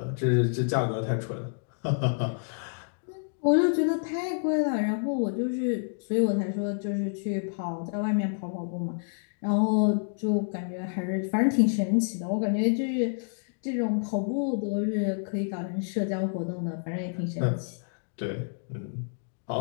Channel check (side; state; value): right; silent; digital silence